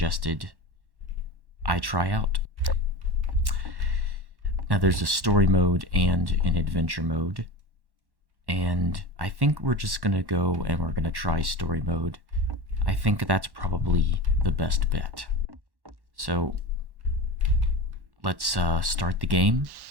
I try out. Now there's a story mode and an adventure mode, and I think we're just gonna go and we're gonna try story mode. I think that's probably the best bet. So let's start the game.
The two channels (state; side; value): late; left; 1.1 ms